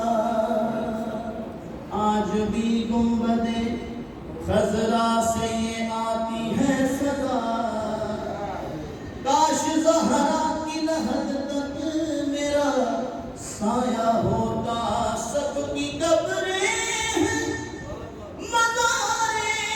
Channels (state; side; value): identical; both; correlation 1.00